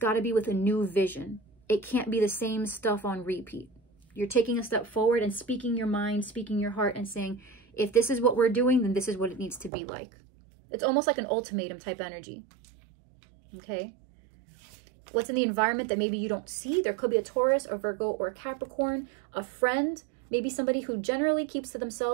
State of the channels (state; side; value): drops out; left; at 9.7 s